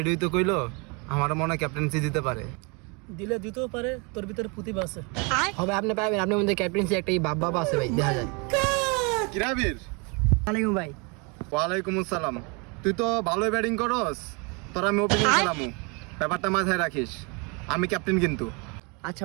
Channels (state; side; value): quieter; left; 31.4 dB